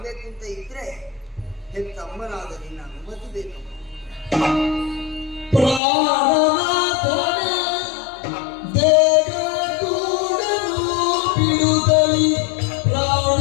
ಅಂತ ಇದ್ರೆ ಹೆತ್ತ ಅಮ್ಮನಾದ ನಿನ್ನ ಅನುಮತಿ ಬೇಕು. ಪ್ರಾಣನಾಥನ ದೇಗೂಡನು ಬಿಡುತ್ತಲಿ ಪ್ರಾಣ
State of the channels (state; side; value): drops out; right; at 5.8 s